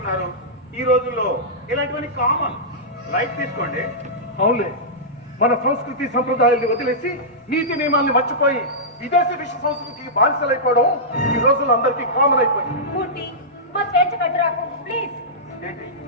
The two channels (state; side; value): normal; both; correlation -0.14